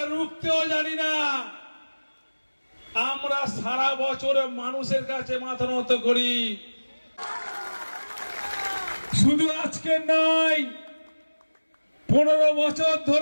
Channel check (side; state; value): both; inverted; correlation -1.00